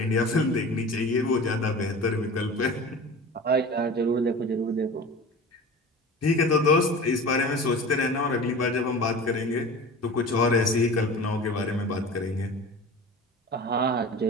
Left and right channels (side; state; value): both; normal; correlation 0.36